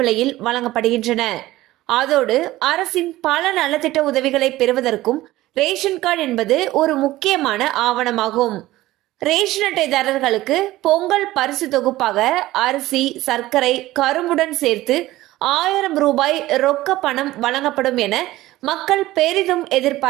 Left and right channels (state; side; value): quieter; left; 16.7 dB